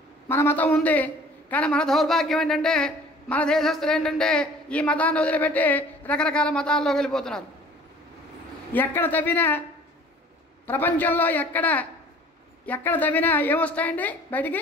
మన మతం ఉంది. కానీ మన దౌర్భాగ్యం ఏంటంటే మన దేశస్తులు ఏంటంటే ఈ మతాన్ని వదిలిపెట్టి రకరకాల మతాల్లోకి వెళ్ళిపోతున్నారు. ఎక్కడ తవ్వినా ప్రపంచంలో ఎక్కడ తవ్వినా ఏమొస్తాయండి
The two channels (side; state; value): both; normal; correlation 0.49